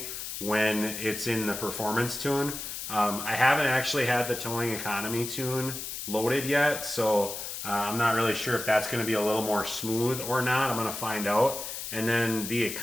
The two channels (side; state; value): left; noise; hiss, 7 dB below the sound